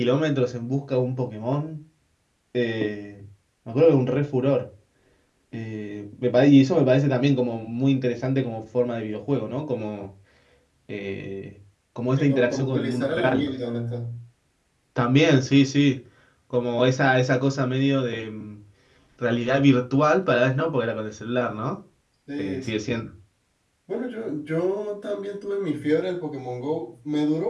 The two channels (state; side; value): identical; both; correlation 1.00